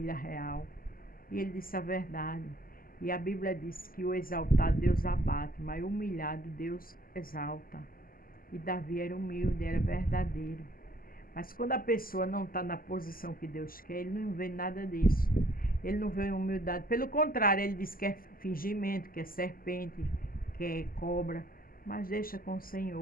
real. E ele disse a verdade. E a Bíblia diz que o exaltado Deus abate, mas o humilhado Deus exalta. E Davi era humilde, era verdadeiro. Mas quando a pessoa não está na posição que Deus quer, ele não vê nada disso. Ele não vê humildade. Pelo contrário, ele diz que é fingimento, que é serpente, que é cobra. Mas deixa com o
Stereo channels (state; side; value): late; right; 0.42 ms